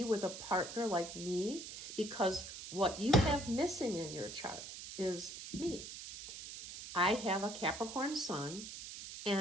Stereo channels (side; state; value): right; noise; hiss, 10 dB below the sound